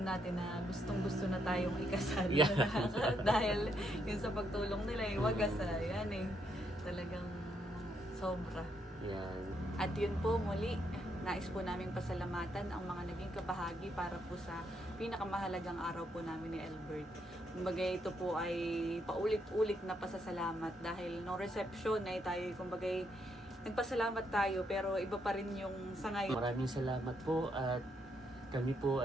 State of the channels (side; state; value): both; normal; correlation 0.76